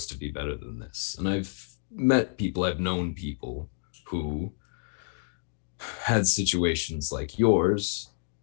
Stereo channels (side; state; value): right; silent; digital silence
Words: to be better than this. And I've known people who had situations like yours,